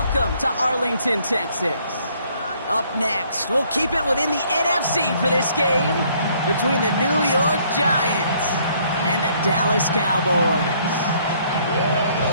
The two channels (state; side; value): inverted; both; correlation -0.64